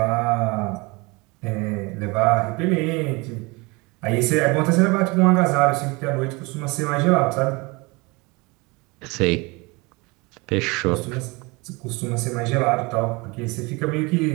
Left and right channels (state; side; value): quieter; left; 26.1 dB